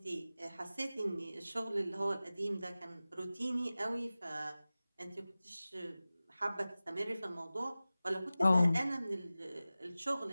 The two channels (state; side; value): inverted; both; correlation -0.97